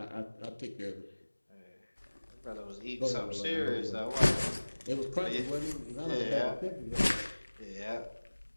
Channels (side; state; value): both; inverted; correlation -1.00